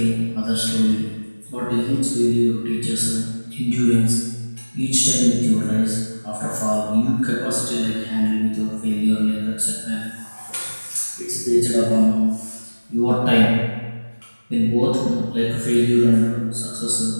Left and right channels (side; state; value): both; inverted; correlation -1.00